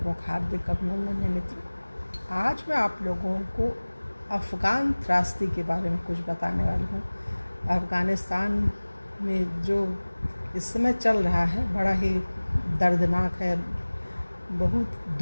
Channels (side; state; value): both; inverted; correlation -1.00